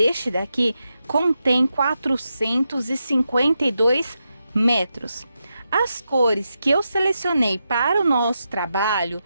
daqui contém 452 metros. As cores que eu selecionei para o nosso trabalho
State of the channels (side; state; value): both; inverted; correlation -0.87